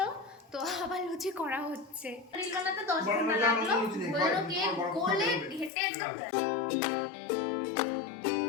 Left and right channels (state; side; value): drops out; right; at 5.7 s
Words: তো আবার লুচি করা হচ্ছে। রিল বানাতে 10 ঘন্টা লাগলো, হলো কেক গোলে ঘেটে একদম।